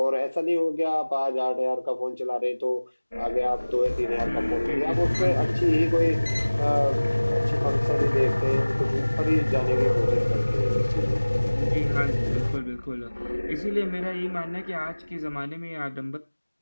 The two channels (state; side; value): inverted; both; correlation -1.00